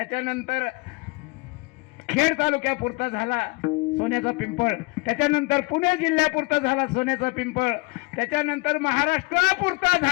खेड तालुक्यापुरता झाला सोन्याचा पिंपळ, त्याच्यानंतर पुणे जिल्ह्यापुरता झाला सोन्याचा पिंपळ, त्याच्यानंतर महाराष्ट्रापुरता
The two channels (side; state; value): right; quieter; 26.9 dB